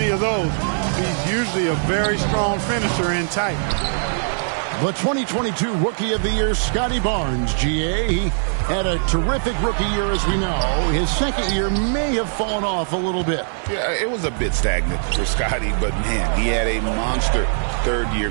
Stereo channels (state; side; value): silent; left; 55 dB below the other